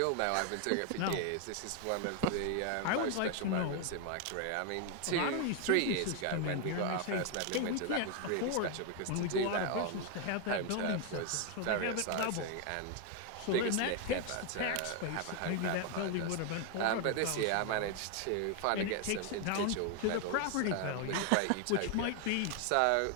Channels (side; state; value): both; different; correlation 0.01